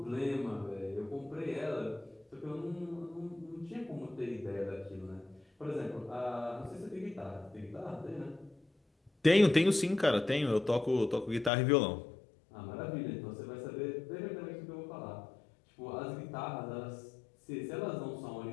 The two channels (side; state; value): right; drops out; at 11.5 s